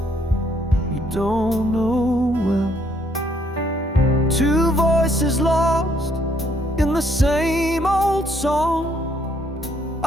you don't know well. Two voices lost in the same old song.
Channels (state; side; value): normal; both; correlation 0.69